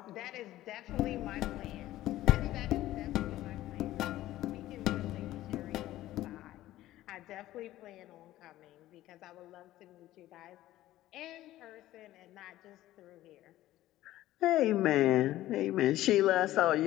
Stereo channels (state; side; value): quieter; right; 15.0 dB